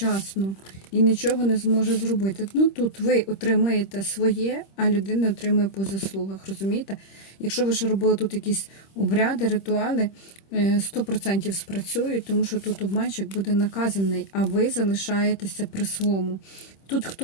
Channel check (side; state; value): right; late; 26 ms